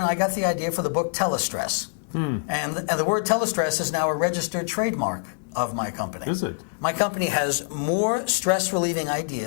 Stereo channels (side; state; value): right; silent; 62 dB below the other